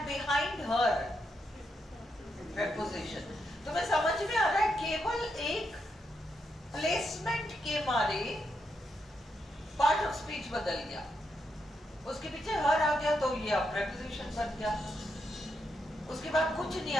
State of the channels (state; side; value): normal; both; correlation 0.82